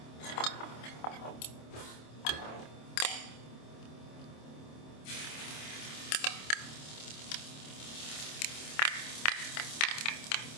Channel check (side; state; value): right; late; 26 ms